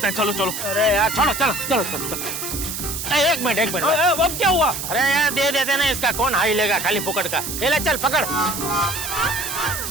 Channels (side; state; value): right; noise; hiss, 5 dB below the sound